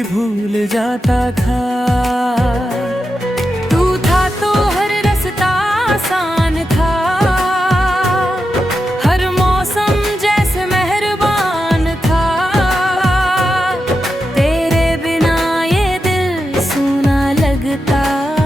भूल जाता था। तू था तो हर रास्ता आसान था, हर मौसम जैसे मेहरबान था। तेरे बिना ये दिल सूना लगता,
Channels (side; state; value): both; normal; correlation 0.88